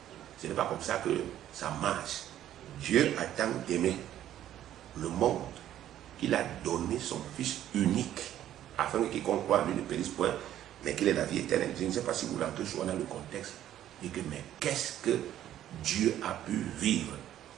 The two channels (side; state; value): left; quieter; 11.9 dB